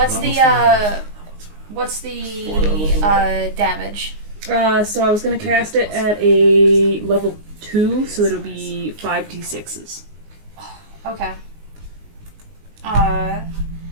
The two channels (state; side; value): late; left; 19 ms